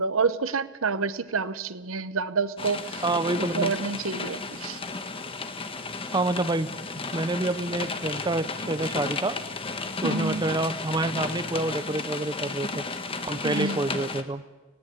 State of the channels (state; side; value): normal; both; correlation 0.24